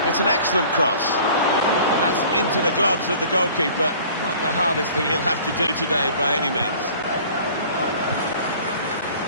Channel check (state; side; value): inverted; both; correlation -0.48